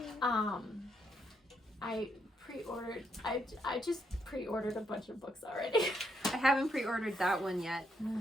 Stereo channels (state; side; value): normal; both; correlation 0.77